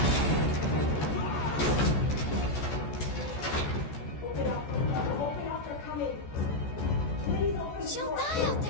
She'll die out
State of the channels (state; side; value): late; right; 14 ms